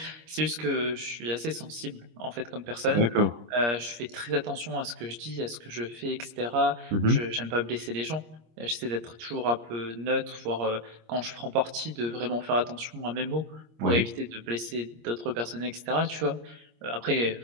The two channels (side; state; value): left; late; 26 ms